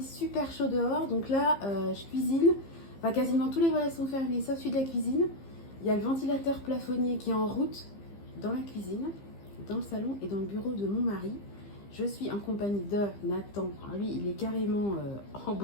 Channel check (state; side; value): late; right; 15 ms